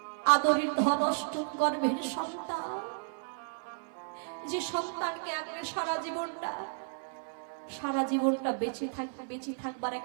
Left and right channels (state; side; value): silent; left; 56 dB below the other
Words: আদরের ধনষ্ট গর্ভের সন্তান, যে সন্তানকে আগে সারা জীবনটা বেঁচে থাকবার